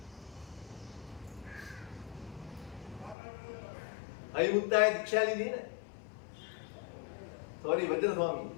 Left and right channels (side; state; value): right; drops out; at 3.2 s